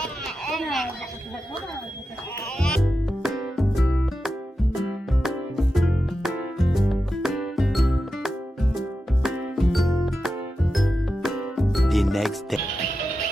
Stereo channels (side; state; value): both; normal; correlation 0.91